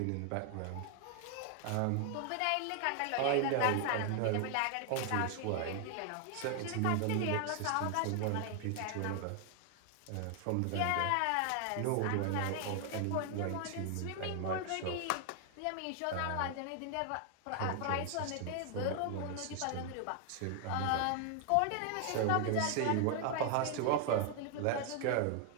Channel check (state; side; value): different; both; correlation 0.00